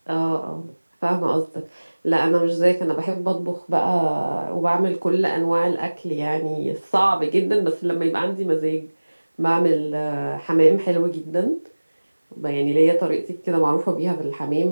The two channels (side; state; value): both; inverted; correlation -1.00